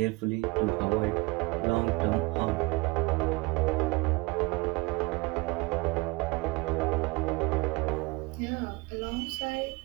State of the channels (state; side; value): quieter; left; 25.2 dB